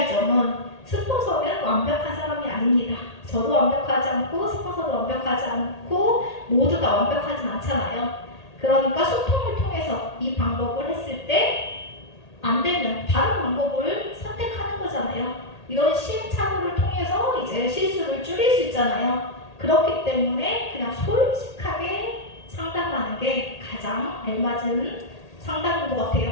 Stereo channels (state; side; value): late; right; 1.8 ms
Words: 점은 스폰서는 완벽한 사람이 아닙니다. 저도 완벽하지 않고 스폰서도 완벽하지 않고 모두가 완벽하진 않잖아요. 그러니까 소통을 통해서 이 방법을 했을 때 안 되면 다른 방법을 선택하는 거잖아요. 이런 시행착오를 통해서 이제 실수를 줄일 수 있잖아요. 그렇기 때문에 그냥 솔직하게 상담하는 게 가장 알맞은 상담인 것